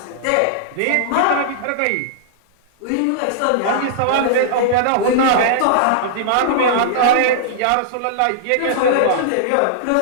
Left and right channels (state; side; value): different; both; correlation -0.02